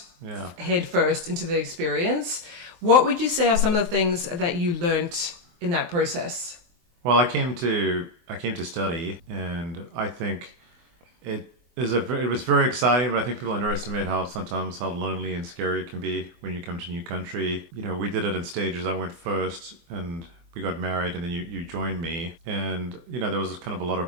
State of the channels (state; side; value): late; left; 23 ms